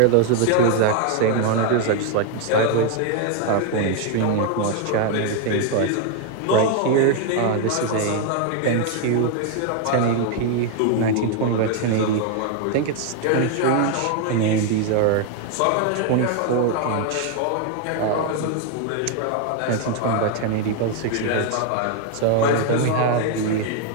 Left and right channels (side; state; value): both; different; correlation 0.01